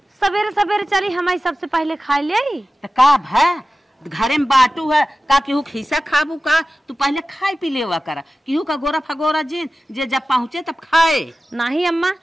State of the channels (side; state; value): both; normal; correlation 0.95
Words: सवेरे सवेरे चली हमारी सबसे पहले खा ले का भै घरे में बाटू है का केहू खीसा खाबू का तू पहले खाए पी लेवा करा केहू का गोरा फगोरा जिन जे जब पहुँचे तब खाए। नहीं अम्मा